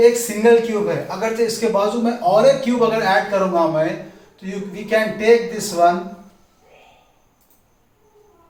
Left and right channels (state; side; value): identical; both; correlation 1.00